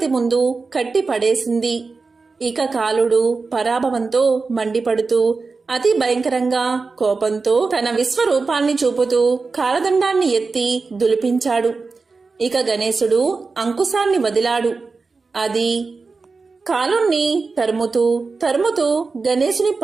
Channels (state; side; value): quieter; left; 4.2 dB